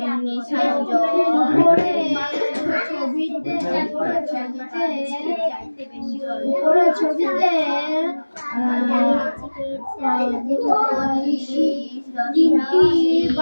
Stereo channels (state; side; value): inverted; both; correlation -1.00